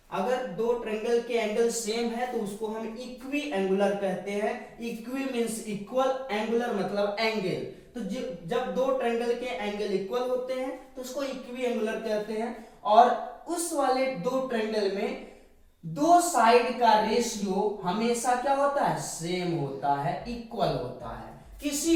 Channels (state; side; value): identical; both; correlation 1.00